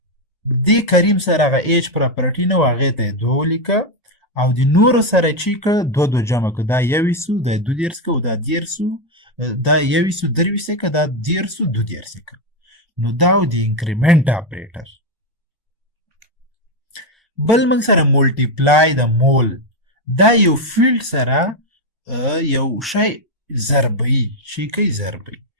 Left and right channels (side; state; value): both; normal; correlation 0.05